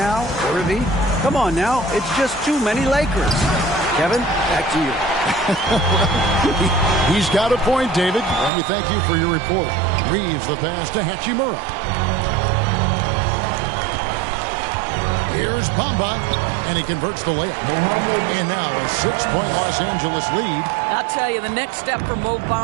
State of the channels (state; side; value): drops out; left; at 8.5 s